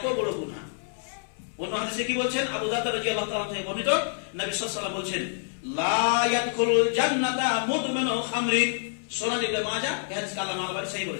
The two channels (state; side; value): silent; right; 59 dB below the other